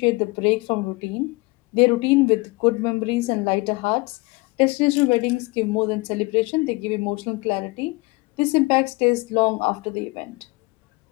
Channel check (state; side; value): quieter; right; 24.6 dB